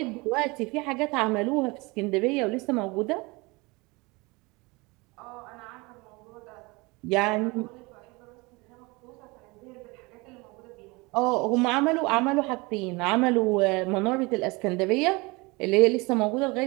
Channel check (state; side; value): quieter; left; 25.3 dB